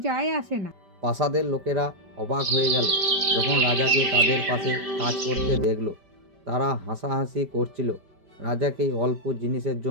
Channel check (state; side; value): late; left; 5.1 ms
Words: যায় আসে না। প্রাসাদের লোকেরা অবাক হয়ে গেল যখন রাজাকে তাদের পাশে কাজ করতে দেখলো। তারা হাসাহাসি করছিল রাজাকে এই অল্প জিনিসের